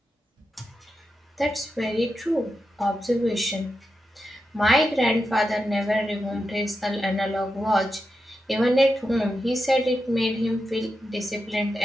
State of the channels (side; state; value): both; normal; correlation 0.88